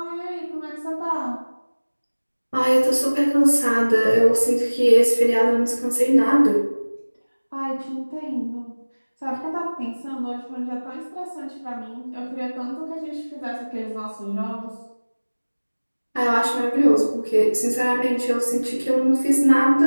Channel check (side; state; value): both; inverted; correlation -1.00